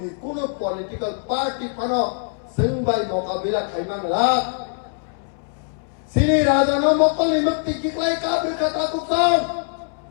kuno political party phano sengbai mokabila khaimang la Sini Rajano Mokoli Makti Kiklai Kabrika Takuksam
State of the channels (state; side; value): silent; right; 64 dB below the other